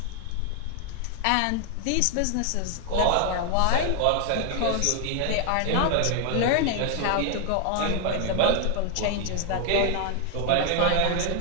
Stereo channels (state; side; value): different; both; correlation 0.00